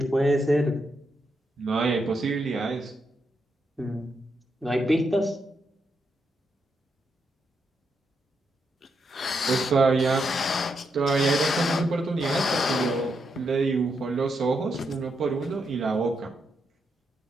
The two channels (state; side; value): normal; both; correlation 0.81